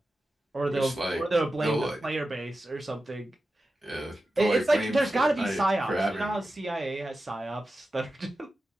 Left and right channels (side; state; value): both; normal; correlation 0.92